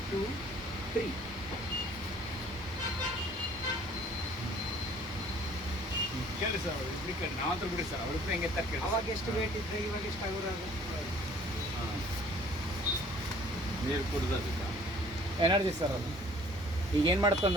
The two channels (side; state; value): both; normal; correlation 0.54